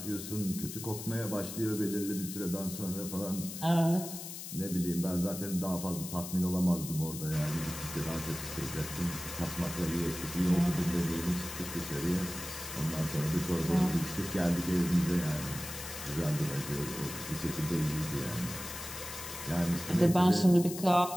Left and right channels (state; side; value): noise; left; hiss, 9 dB below the sound